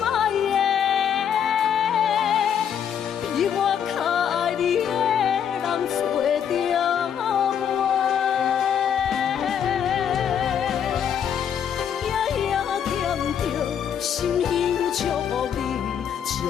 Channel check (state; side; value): quieter; right; 8.5 dB